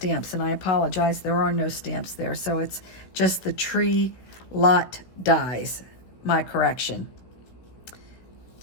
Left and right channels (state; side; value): late; right; 16 ms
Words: and I apologize, there are no stamps there, so it's just the Tree Lot dies, my correction.